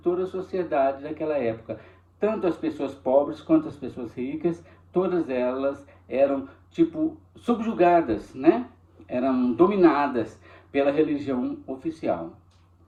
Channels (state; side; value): identical; both; correlation 1.00